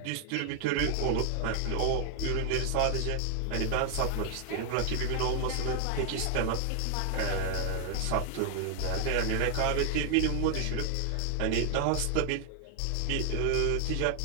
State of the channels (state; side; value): different; both; correlation 0.00